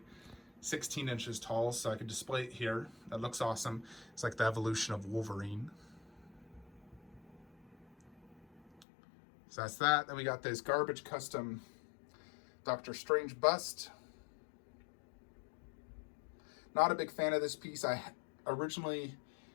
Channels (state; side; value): drops out; right; at 8.8 s